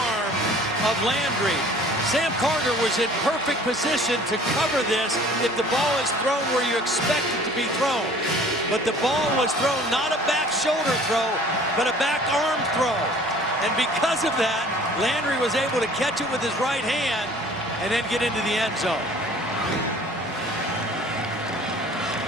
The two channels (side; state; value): both; normal; correlation 0.50